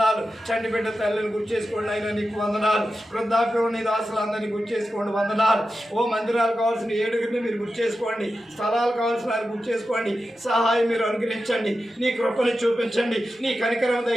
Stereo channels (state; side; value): normal; both; correlation 0.92